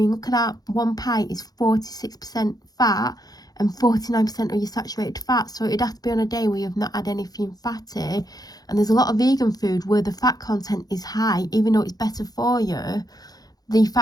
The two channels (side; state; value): right; late; 0.19 ms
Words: look at that. 1 pint is 46% fat and 49% of your saturated fat. So it'd have to be on a day where you've not had anything fatty. And there's a lot of vegan food where the fat content is high, even though it's better for you. The